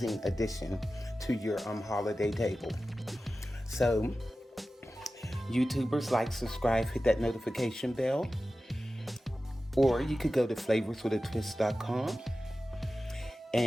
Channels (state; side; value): normal; both; correlation 0.94